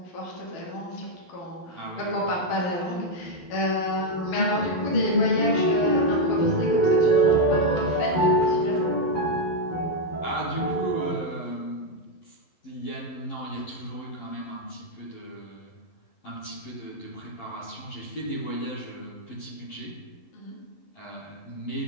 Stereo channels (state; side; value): late; right; 12 ms